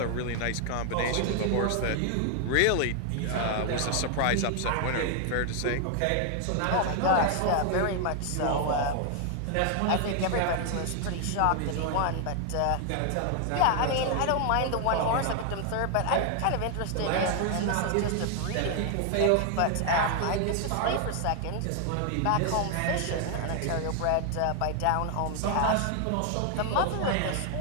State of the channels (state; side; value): different; both; correlation 0.00